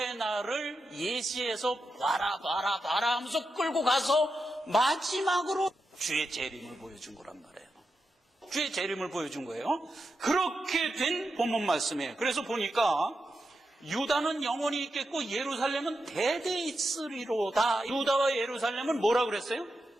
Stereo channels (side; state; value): both; normal; correlation 0.88